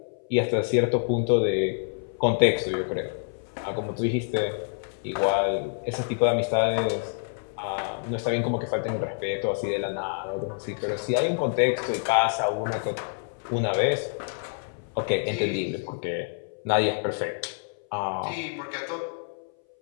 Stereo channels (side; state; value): right; silent; 59 dB below the other